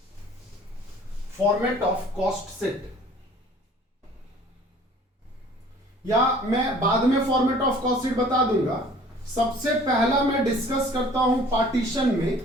फॉर्मेट ऑफ कॉस्ट शीट, या मैं बाद में फॉर्मेट ऑफ कॉस्ट शीट बता दूंगा। सबसे पहला मैं डिस्कस करता हूं पार्टीशन में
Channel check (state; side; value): normal; both; correlation 0.51